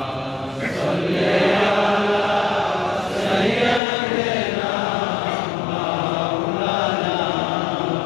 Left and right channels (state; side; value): drops out; right; at 3.8 s